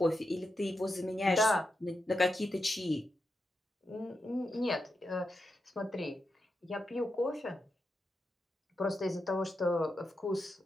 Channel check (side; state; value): both; normal; correlation 0.87